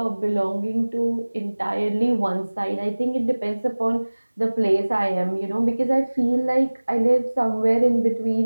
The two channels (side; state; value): both; inverted; correlation -1.00